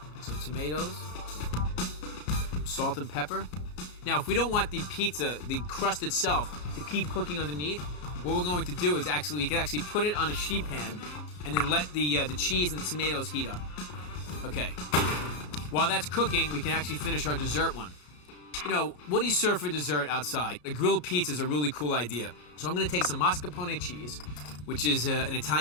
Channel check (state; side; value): late; right; 33 ms